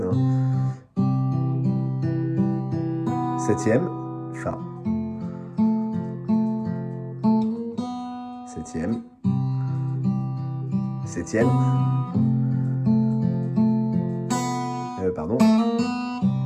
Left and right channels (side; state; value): both; identical; correlation 1.00